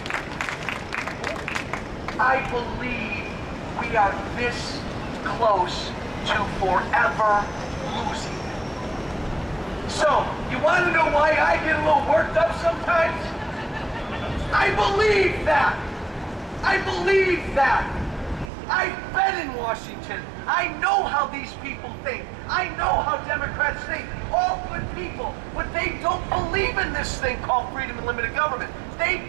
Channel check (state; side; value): drops out; left; at 18.5 s